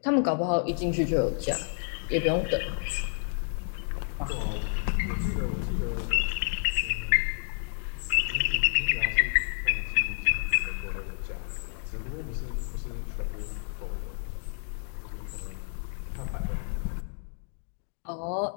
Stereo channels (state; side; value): silent; right; 58 dB below the other